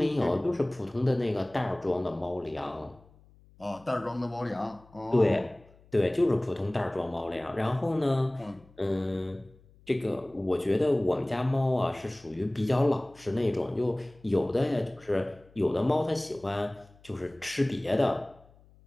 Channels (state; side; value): noise; left; hum, 27 dB below the sound